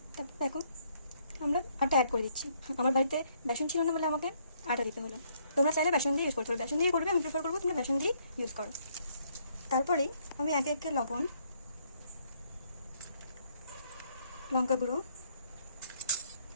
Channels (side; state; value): both; inverted; correlation -0.69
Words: তারপর দেখো আমরা আটা অ্যাড করে দিচ্ছি। আমার বাড়িতে বেসন ছিল না বলে আমাকে আটা দিতে হলো। তোমরা চাইলে বেসন দিয়ে ইউজ করতে পারো, বেসন দিয়ে করবে, আমি প্রেফার করবো তোমরা বেসন দিয়ে ইউজ করো। তারপরেই আমি একে একে লবণ, লঙ্কা গুঁড়ো